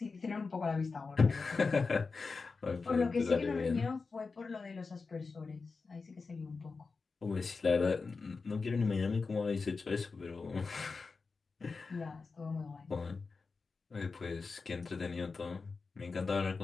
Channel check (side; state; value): right; quieter; 4.4 dB